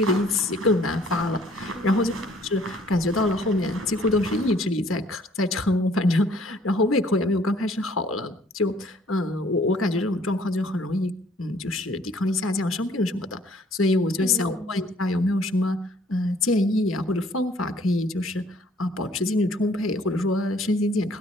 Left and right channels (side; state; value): both; normal; correlation 0.58